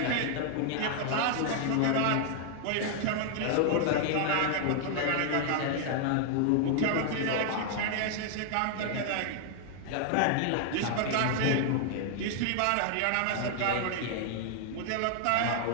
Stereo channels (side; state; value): both; different; correlation 0.00